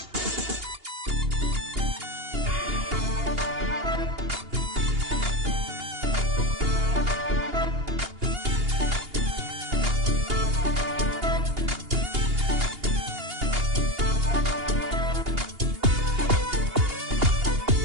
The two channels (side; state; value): left; late; 2.8 ms